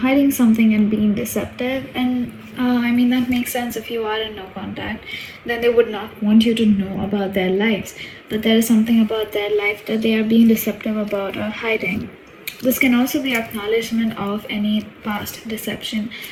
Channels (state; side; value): identical; both; correlation 1.00